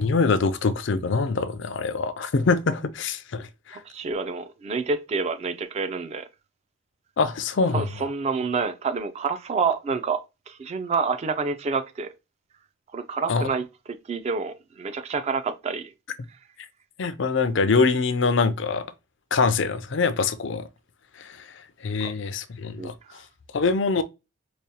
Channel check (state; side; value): normal; both; correlation 0.09